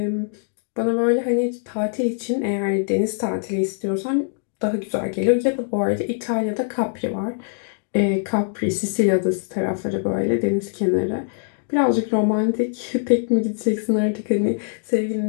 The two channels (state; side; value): silent; right; digital silence